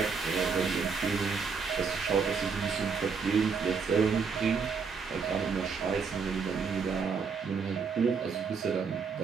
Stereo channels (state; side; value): quieter; left; 5.5 dB